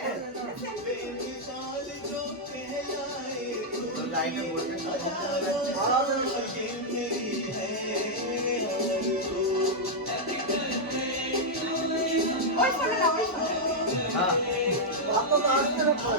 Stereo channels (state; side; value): normal; both; correlation -0.04